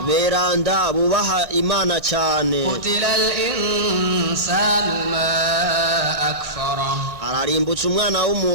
beranda bubaha Imana cyane. قتل الإنسان ما أكفره ararimbutsa umwana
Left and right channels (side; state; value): left; late; 1.6 ms